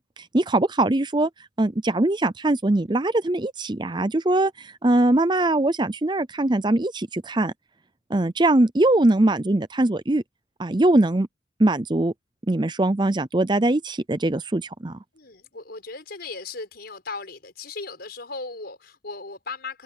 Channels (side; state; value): both; normal; correlation 0.72